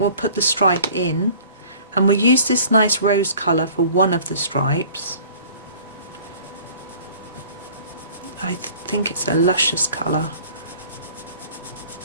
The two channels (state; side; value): inverted; both; correlation -0.49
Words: put the stripe in, and we'll use this nice rose colour for one of the stripes. I think it's a luscious colour.